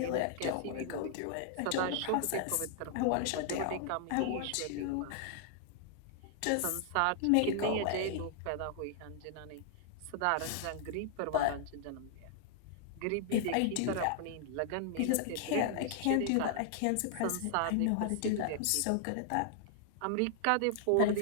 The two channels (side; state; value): both; different; correlation 0.00